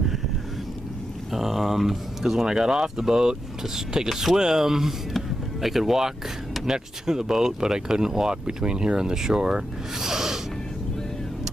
Because when I got off the boat to take a swim, I could walk next to the boat, but I couldn't walk between here and the shore.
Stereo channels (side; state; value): both; normal; correlation 0.87